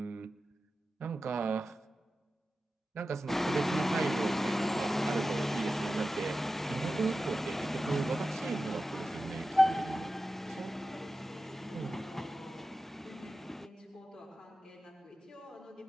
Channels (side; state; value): both; normal; correlation 0.93